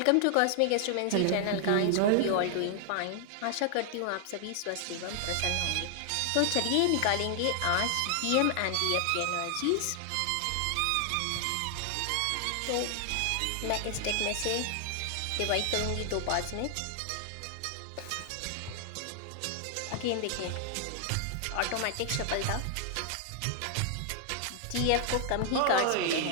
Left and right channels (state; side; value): different; both; correlation 0.00